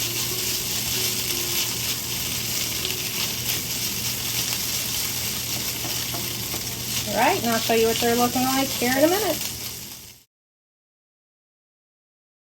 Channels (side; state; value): both; identical; correlation 1.00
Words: Alright, and I'll show you what they're looking like here in a minute.